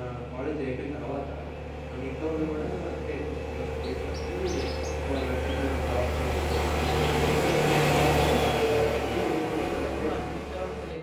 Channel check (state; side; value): identical; both; correlation 1.00